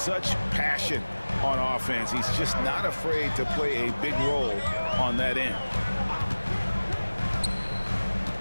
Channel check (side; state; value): both; inverted; correlation -1.00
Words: passion on offense. He's just not afraid to play a big role on that end.